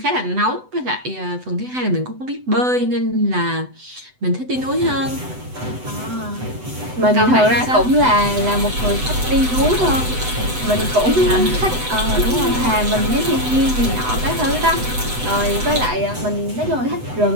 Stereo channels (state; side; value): late; left; 8.0 ms